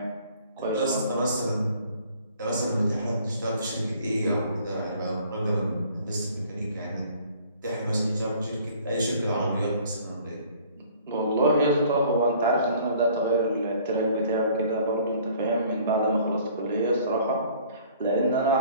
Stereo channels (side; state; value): both; inverted; correlation -0.55